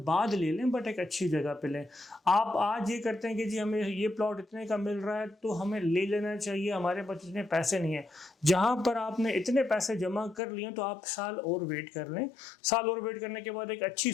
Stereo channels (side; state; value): right; drops out; at 10.4 s